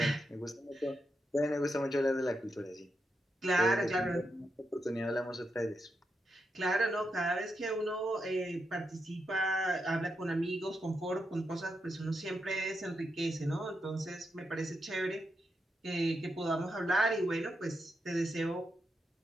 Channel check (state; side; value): normal; both; correlation 0.84